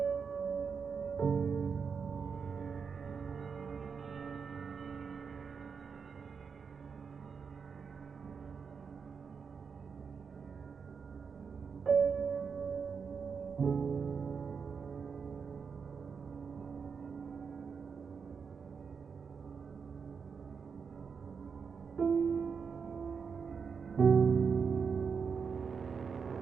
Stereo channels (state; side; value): quieter; left; 5.9 dB